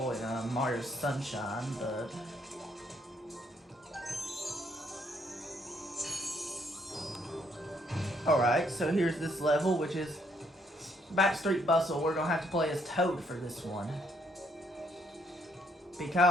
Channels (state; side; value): normal; both; correlation 0.70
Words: in Mario Sunshine, but... Alright, so here's this level, which is Backstreet Bustle. We're gonna have to play as Toad for this one.